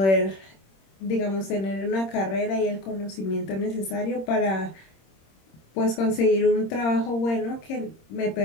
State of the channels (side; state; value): right; late; 26 ms